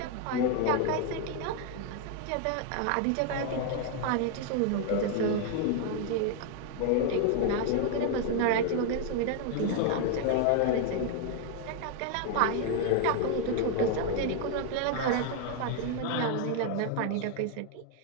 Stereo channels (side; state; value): both; different; correlation 0.00